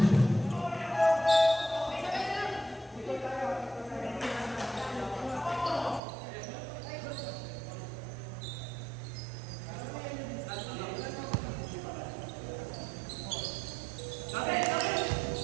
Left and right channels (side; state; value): left; drops out; at 6.0 s